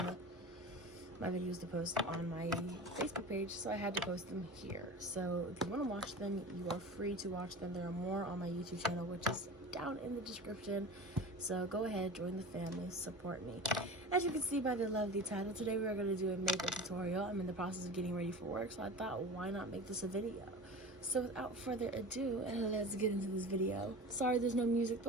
videos to post on my Facebook page, so I had to post them here. So if you want to watch them, you are free to watch them. There are more on my YouTube channel, which is down in the description. So go ahead, join the family, support me. As you can see by the lovely title, today we are going to do a makeup tutorial. I'm in the process of getting ready for work, so I thought, why not make this a video? So without further ado, let's get into this video. Sorry there's no music, the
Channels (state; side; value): normal; both; correlation 0.33